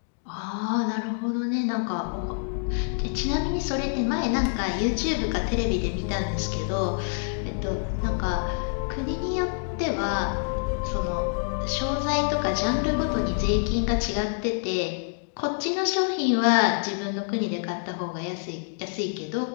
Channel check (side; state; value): right; silent; digital silence